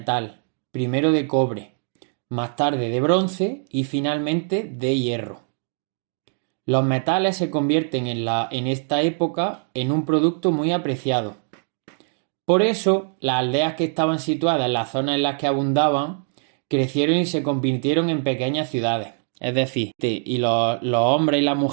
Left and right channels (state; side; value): silent; left; 58 dB below the other